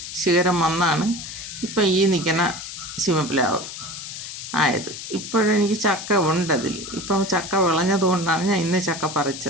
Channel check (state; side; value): noise; left; hiss, 9 dB below the sound